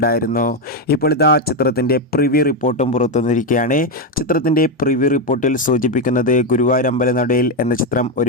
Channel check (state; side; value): normal; both; correlation 0.07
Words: ഇപ്പോൾ ഇതാ ചിത്രത്തിൻ്റെ പ്രിവ്യൂ റിപ്പോർട്ടും പുറത്തുവന്നിരിക്കുകയാണ്. ചിത്രത്തിൻ്റെ പ്രിവ്യൂ റിപ്പോർട്ടിൽ സൂചിപ്പിക്കുന്നത് ഗുരുവായൂരമ്പല നടയിൽ എന്ന ചിത്രം